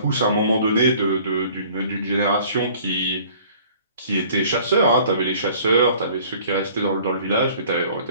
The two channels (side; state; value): both; inverted; correlation -0.52